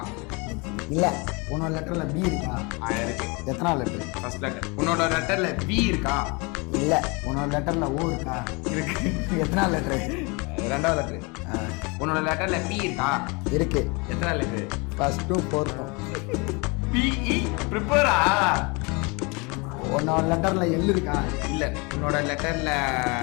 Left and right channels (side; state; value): right; quieter; 28.9 dB